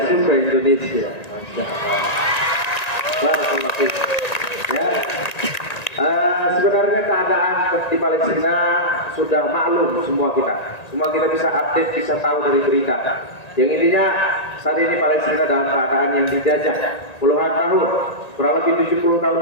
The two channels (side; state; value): right; late; 1.9 ms